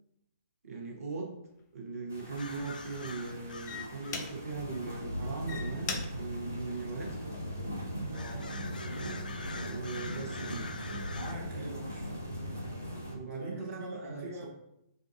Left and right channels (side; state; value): both; inverted; correlation -0.61